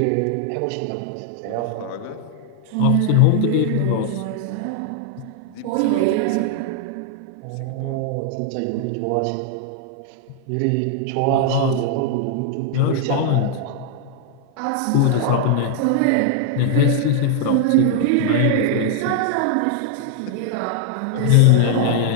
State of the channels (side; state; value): both; different; correlation 0.00